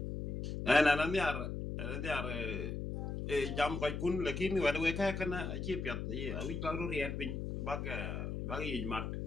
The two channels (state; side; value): noise; left; hum, 4 dB below the sound